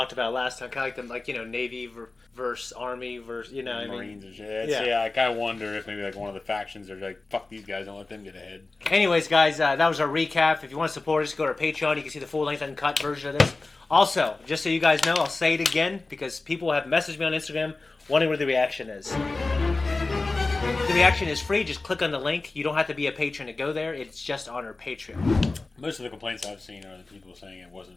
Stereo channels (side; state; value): right; quieter; 3.4 dB